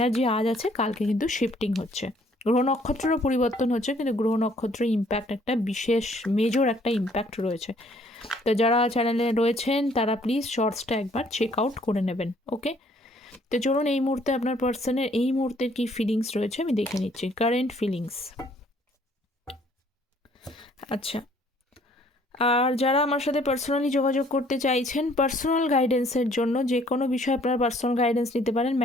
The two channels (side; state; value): both; normal; correlation 0.61